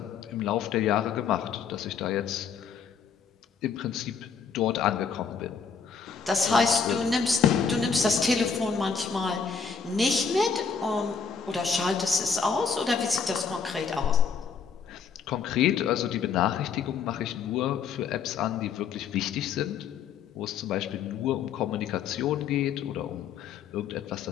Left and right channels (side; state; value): right; quieter; 6.1 dB